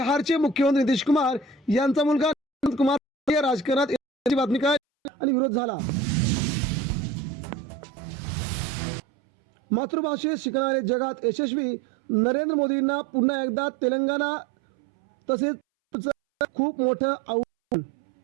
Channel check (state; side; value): drops out; left; at 4.8 s